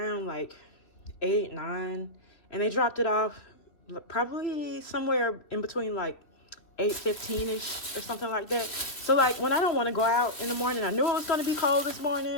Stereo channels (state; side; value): late; right; 3.3 ms